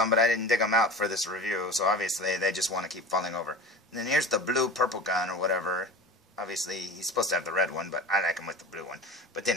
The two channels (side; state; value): both; normal; correlation 0.33